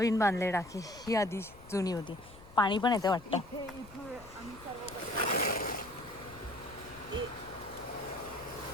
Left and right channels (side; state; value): left; noise; rumble, 20 dB below the sound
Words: बांधले टाकी. ही आधी जुनी होती. पाणी पण येते वाटतं.